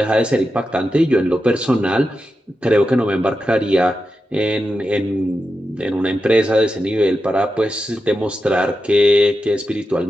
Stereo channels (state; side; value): normal; both; correlation 0.89